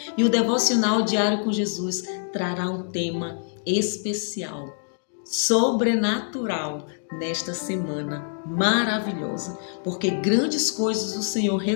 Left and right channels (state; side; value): silent; right; digital silence